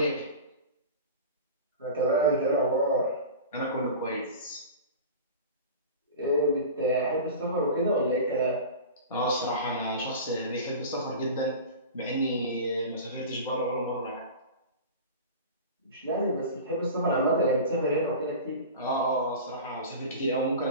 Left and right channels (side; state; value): both; inverted; correlation -0.33